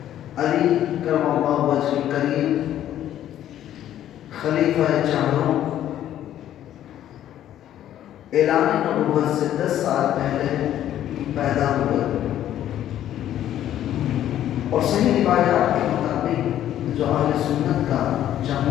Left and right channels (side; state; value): right; quieter; 11.7 dB